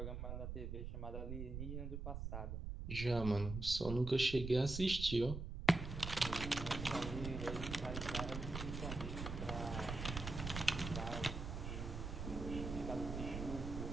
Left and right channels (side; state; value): right; noise; rumble, 5 dB below the sound